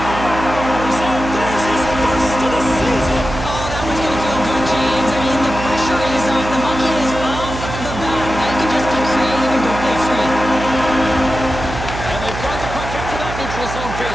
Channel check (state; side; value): noise; right; hum, 8 dB below the sound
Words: And there's his first of the season. Oh, that one's going to feel good, James. I mean, the pressure is on. The monkey is off the bat. Now you can just be creative and go play free. And they've got the puck after that neutral zone